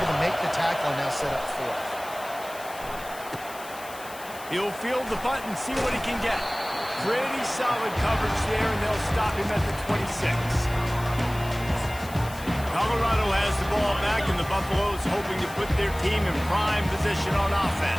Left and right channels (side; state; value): left; noise; hiss, 16 dB below the sound